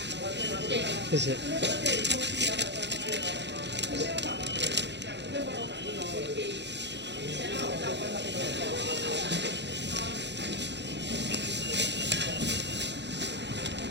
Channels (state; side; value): late; left; 0.51 ms